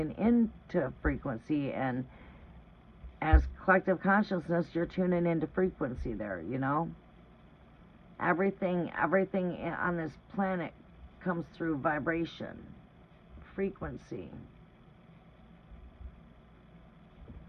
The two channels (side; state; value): both; identical; correlation 1.00